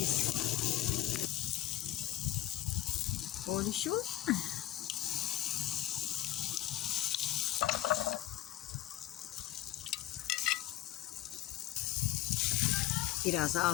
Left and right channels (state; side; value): quieter; right; 14.2 dB